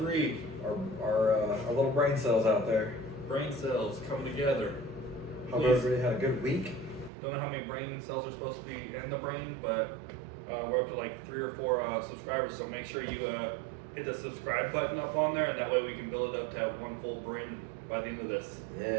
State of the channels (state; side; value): drops out; left; at 7.1 s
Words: Our little brain cells out there. Brain cells coming together. Hope Please. everybody had a good week. Don't know how many brain cells are supposed to be in the brain, but we're up to like 3 or 4 subscribers, so make sure you hit the subscribe button up on there, and that way we can build it up to have one full brain by the end of this.